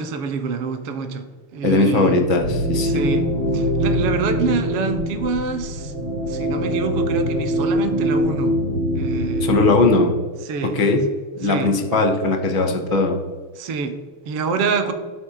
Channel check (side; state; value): left; late; 6.2 ms